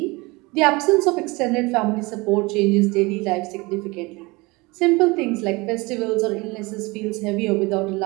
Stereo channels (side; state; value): left; quieter; 24.5 dB